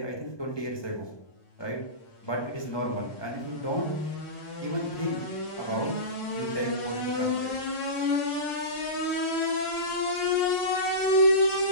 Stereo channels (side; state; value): right; late; 1.1 ms